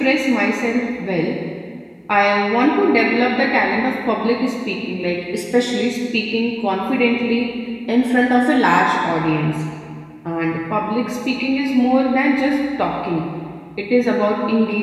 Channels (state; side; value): identical; both; correlation 1.00